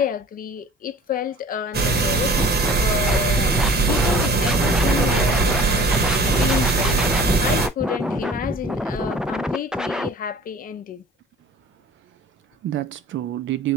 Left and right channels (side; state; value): both; normal; correlation 0.46